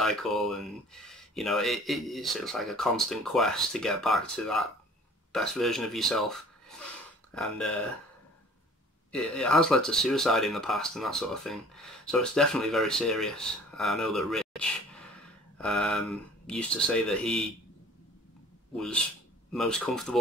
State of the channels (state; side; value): normal; both; correlation 0.49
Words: And you know, it's like a constant quest to get back to that best version of yourself. and it has led to suicide in the past and that sort of thing. So it's definitely very serious. I know that Rich used to say that he was most